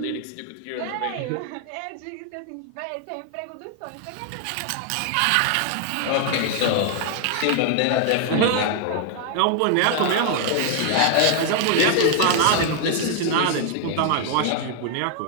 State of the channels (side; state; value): both; different; correlation 0.00